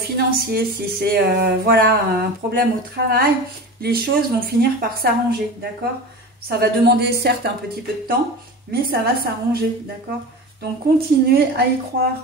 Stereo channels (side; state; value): both; normal; correlation 0.31